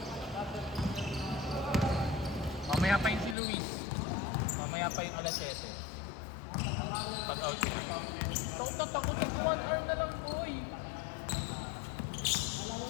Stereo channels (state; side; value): drops out; right; at 3.4 s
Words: Mamaya pa yung si Luis. Mamaya pa yung alas 7. Pag-out siya. Takot na takot na 1 hour na lang, boy. Alam mo